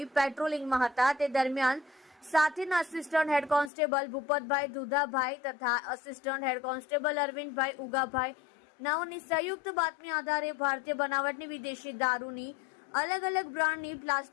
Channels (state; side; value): drops out; right; at 3.7 s